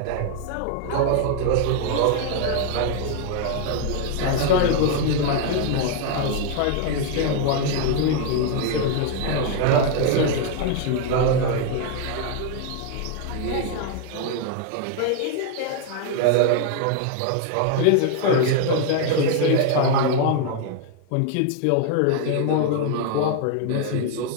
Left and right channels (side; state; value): both; different; correlation 0.00